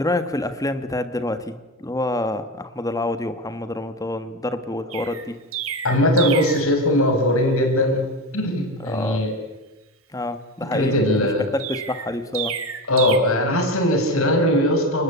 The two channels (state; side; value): normal; both; correlation 0.21